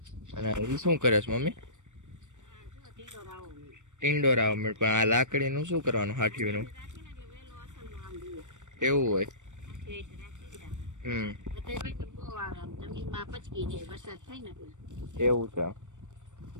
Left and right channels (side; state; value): left; late; 0.85 ms